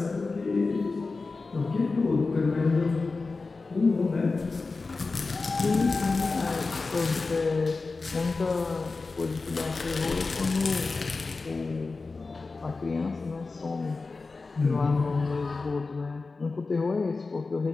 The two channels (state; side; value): quieter; right; 3.9 dB